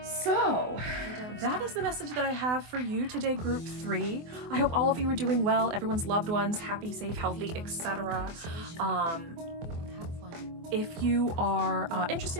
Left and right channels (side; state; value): left; late; 24 ms